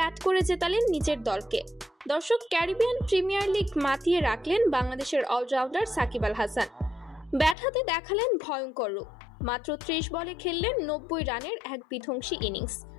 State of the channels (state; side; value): drops out; right; at 7.6 s